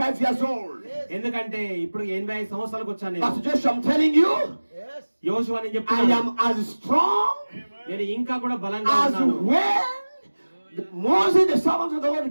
years old. ఎందుకంటే ఇప్పుడు 85 సంవత్సరాలకు వచ్చాను But నేను. Joshua, I'm telling you, యోషువా నేను I చెప్తున్నాను, am as strong నేను ఇంకా కూడా బలంగా as ఉన్నాను. when Moses, the servant of the Lord,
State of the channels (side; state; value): both; inverted; correlation -1.00